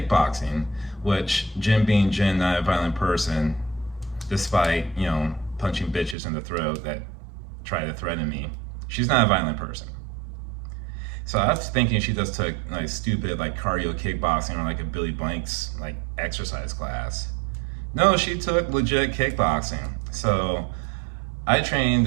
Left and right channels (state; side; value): drops out; left; at 6.2 s